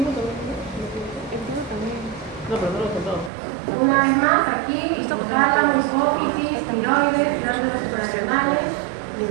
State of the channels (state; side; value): drops out; left; at 3.3 s